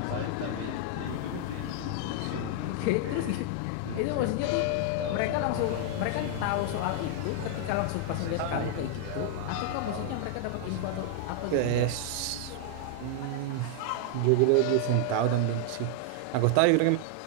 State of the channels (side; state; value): both; different; correlation 0.00